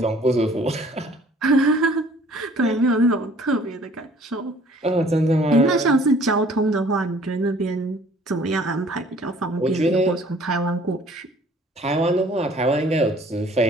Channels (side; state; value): both; normal; correlation 0.55